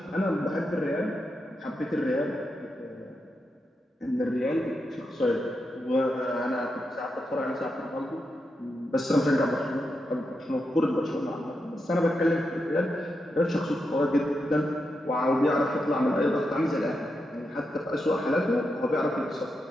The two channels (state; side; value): normal; both; correlation 0.86